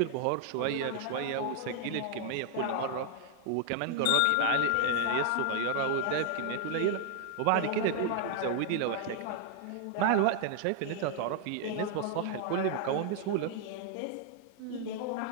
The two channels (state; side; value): different; both; correlation 0.00